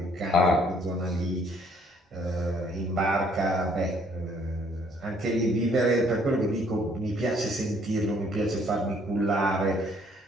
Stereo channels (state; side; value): normal; both; correlation 0.63